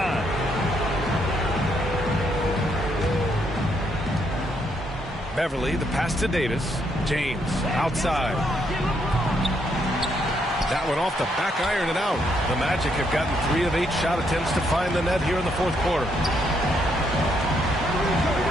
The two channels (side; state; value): both; normal; correlation 0.74